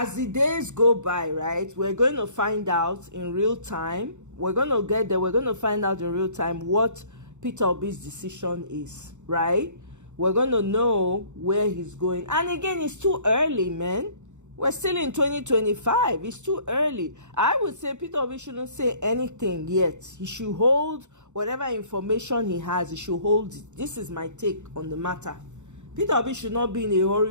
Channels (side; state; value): left; late; 0.84 ms